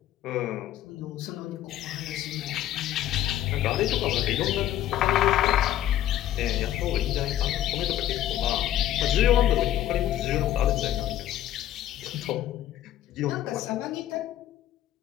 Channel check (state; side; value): quieter; right; 12.3 dB